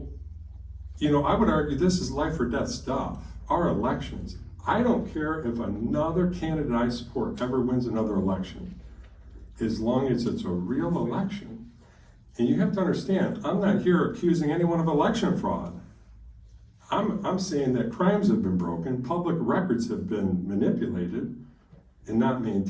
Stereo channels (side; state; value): both; identical; correlation 1.00